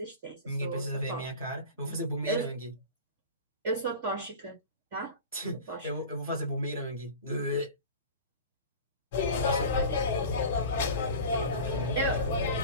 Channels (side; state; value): both; inverted; correlation -0.34